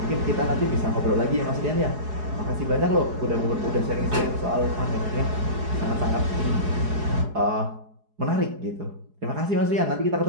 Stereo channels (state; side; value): late; left; 4.8 ms